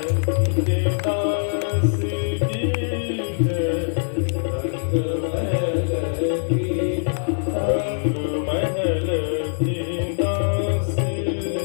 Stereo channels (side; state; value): right; silent; digital silence